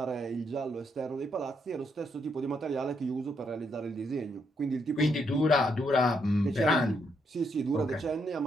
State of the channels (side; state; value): both; normal; correlation 0.76